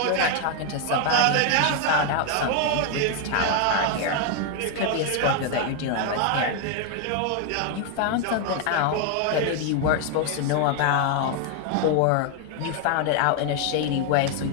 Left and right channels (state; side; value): different; both; correlation 0.00